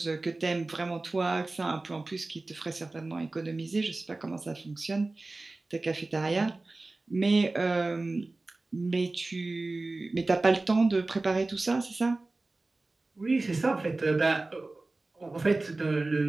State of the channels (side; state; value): left; quieter; 3.2 dB